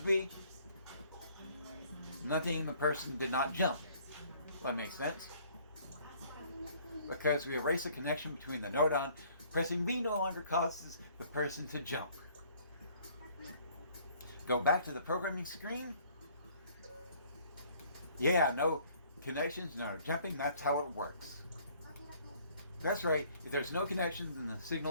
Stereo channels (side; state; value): both; inverted; correlation -0.58